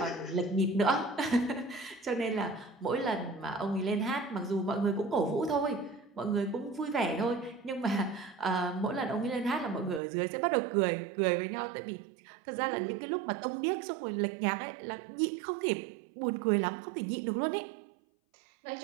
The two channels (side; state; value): left; drops out; at 10.0 s